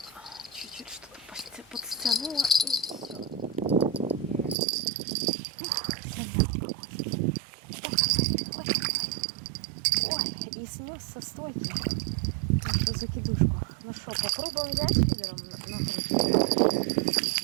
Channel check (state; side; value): drops out; left; at 4.5 s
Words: Чуть-чуть что-то подстянула и все. Ой, и снес со стойки нашу закидушку. Ну что, попробуем взять фидером накрутить?